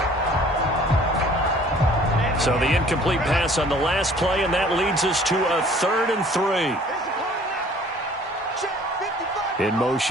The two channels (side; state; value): both; normal; correlation 0.53